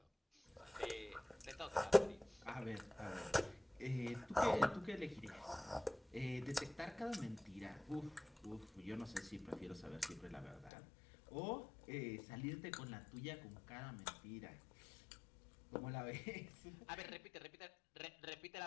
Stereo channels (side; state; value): right; drops out; at 10.7 s